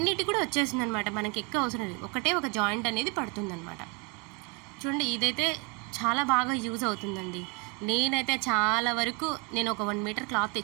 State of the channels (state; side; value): quieter; left; 29.5 dB